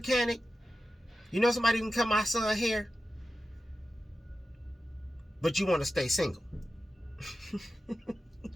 You know somebody who can cut my son's hair? But you want to stay single.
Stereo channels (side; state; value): both; normal; correlation 0.92